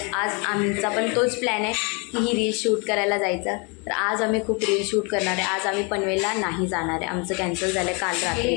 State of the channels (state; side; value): quieter; right; 32.3 dB